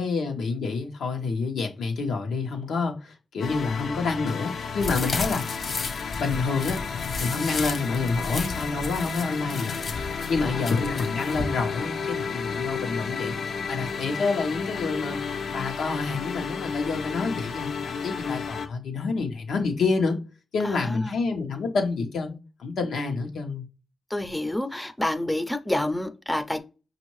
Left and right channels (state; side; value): quieter; right; 3.8 dB